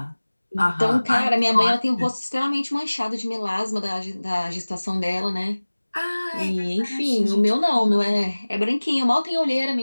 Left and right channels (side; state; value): both; inverted; correlation -1.00